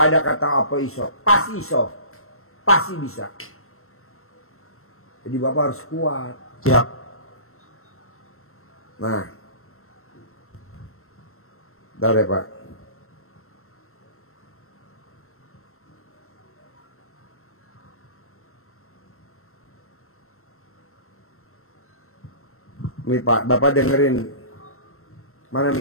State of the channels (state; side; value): late; right; 0.62 ms